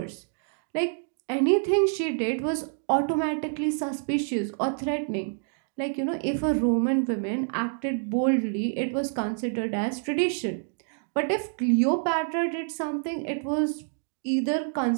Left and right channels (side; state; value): left; silent; digital silence